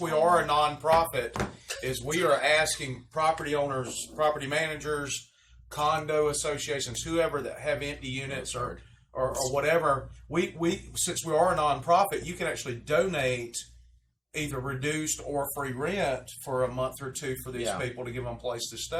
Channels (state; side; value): identical; both; correlation 1.00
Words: we are a nonprofit, is we are asking property owners, property managers, condo associations, whoever that have empty units or whatever. We since we are a nonprofit, you can actually donate either reduced or free rent for a month or 2 for these Yeah. people to give them a place to